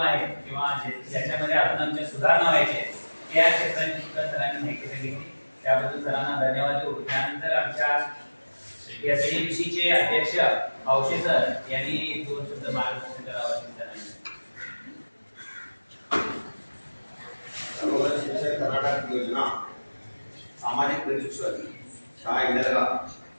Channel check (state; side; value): inverted; both; correlation -1.00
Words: आहेत किंवा ज्याच्यामध्ये अजून आमच्या सुधारणा व्हायच्या त्या क्षेत्रांची सुद्धा सरांनी माहिती सांगितली. त्याबद्दल सरांना धन्यवाद देऊ. त्यानंतर आमच्या एसडीएमसीचे अध्यक्ष औषे सर यांनी 2 शब्द मार्गदर्शन करावं. सर्वोदय शिक्षक कर्नाटक योजना सामाजिक प्रशिक्षण शाळा इंदरगा